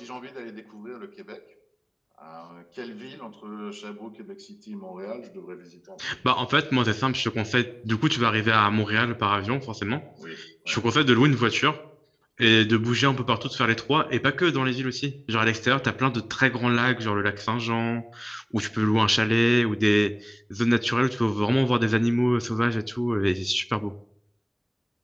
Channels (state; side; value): identical; both; correlation 1.00